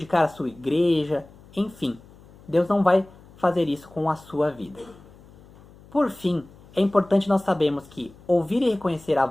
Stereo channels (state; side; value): noise; left; hum, 24 dB below the sound